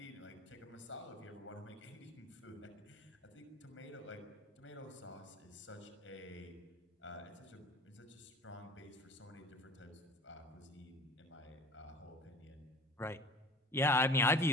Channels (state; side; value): normal; both; correlation 0.43